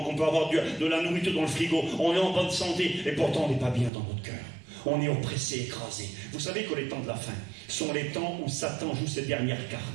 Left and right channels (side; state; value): left; drops out; at 3.9 s